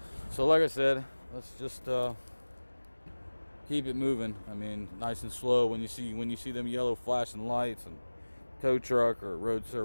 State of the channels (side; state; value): both; inverted; correlation -1.00